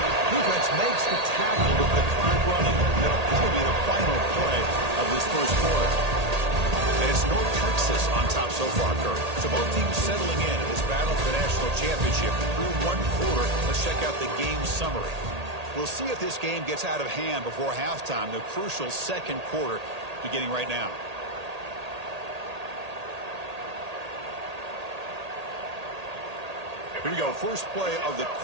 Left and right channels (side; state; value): left; late; 1.8 ms